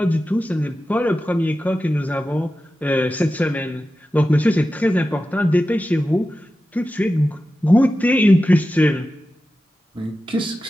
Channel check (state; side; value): normal; both; correlation 0.93